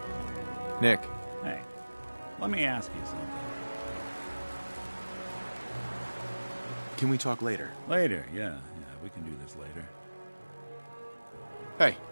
Nick. Hey, let me ask you something. Can we talk later? Later, yeah, we can do this later. Hey.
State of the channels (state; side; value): inverted; both; correlation -1.00